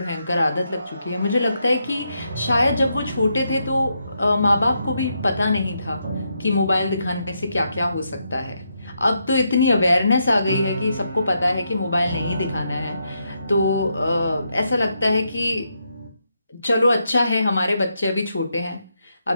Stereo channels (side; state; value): both; inverted; correlation -0.81